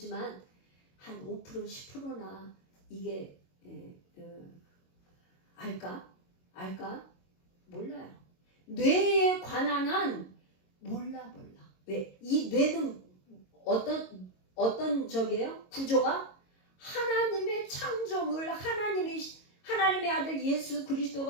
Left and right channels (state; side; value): late; right; 22 ms